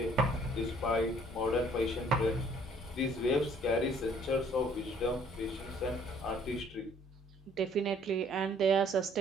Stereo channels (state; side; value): normal; both; correlation 0.59